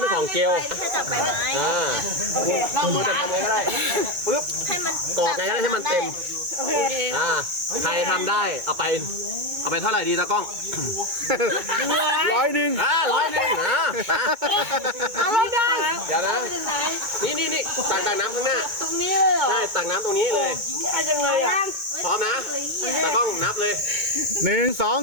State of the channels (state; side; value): late; left; 2.2 ms